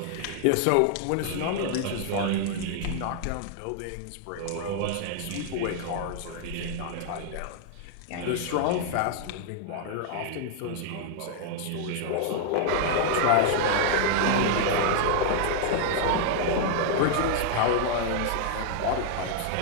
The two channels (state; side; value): different; both; correlation 0.00